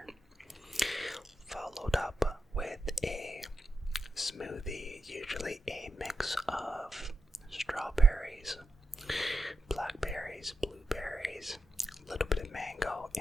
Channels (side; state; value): both; normal; correlation 0.88